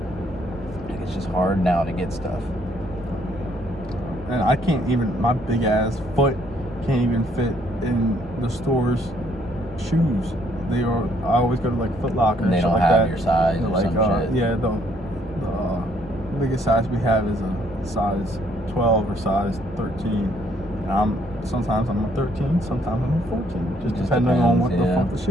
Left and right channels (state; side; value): normal; both; correlation 0.67